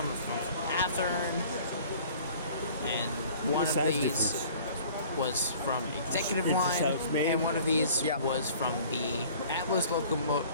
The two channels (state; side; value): inverted; both; correlation -0.49